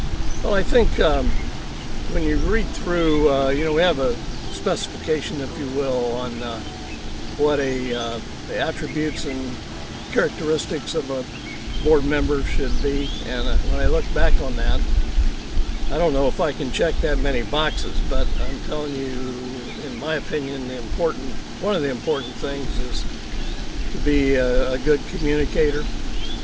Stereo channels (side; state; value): both; identical; correlation 1.00